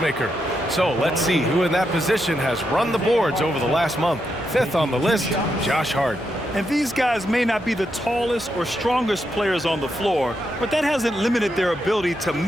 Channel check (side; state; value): both; normal; correlation 0.83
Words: maker. So let's see who in that position has run the boards over the last month. 5th on the list, Josh Hart. And these guys may not be the tallest or strongest players on the floor, but that hasn't limited their ability to